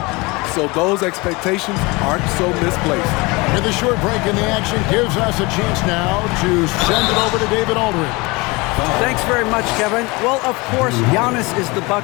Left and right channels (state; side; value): quieter; right; 25.0 dB